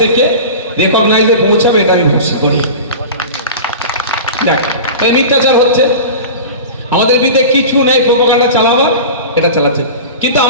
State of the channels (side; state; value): both; inverted; correlation -0.32